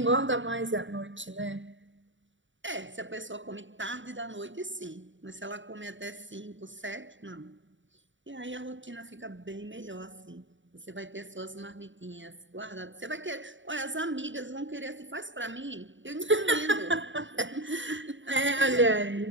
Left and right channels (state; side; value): late; left; 0.55 ms